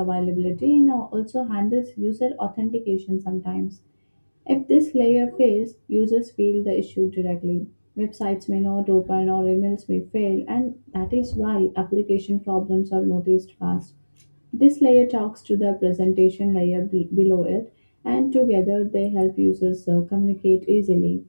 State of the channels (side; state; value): both; inverted; correlation -1.00